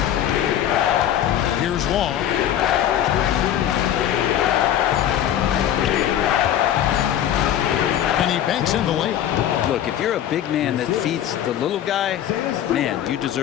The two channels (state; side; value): quieter; right; 10.9 dB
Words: Here's Long. And he banks in the layup. Look, if you're a big man that feeds the little guy, man, you